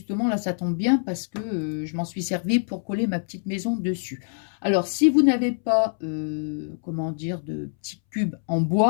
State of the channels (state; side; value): silent; right; 62 dB below the other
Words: là, ça tombe bien parce que je m'en suis servi pour coller ma petite maison dessus. Alors, si vous n'avez pas, comment dire, de petits cubes en